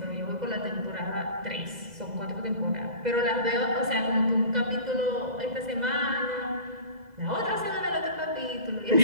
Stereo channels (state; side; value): late; left; 2.0 ms